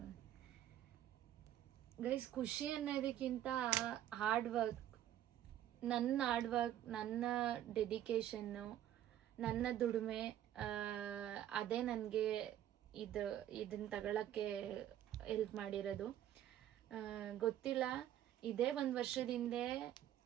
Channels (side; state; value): left; quieter; 11.7 dB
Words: ಗೈಸ್, ಖುಷಿ ಅನ್ನೋದಕ್ಕಿಂತ ಹಾರ್ಡ್ ವರ್ಕ್, ನನ್ನ ಡೆಡಿಕೇಶನ್ನು, ನನ್ನ ದುಡಿಮೆ, ಅದೇ ನನಗೆ ಇದನ್ನು ತಗೊಳ್ಳೋಕ್ಕೆ ಹೆಲ್ಪ್ ಮಾಡಿರೋದು. ಗೊತ್ತಿಲ್ಲ, ಇದೇ 1 ವರ್ಷದ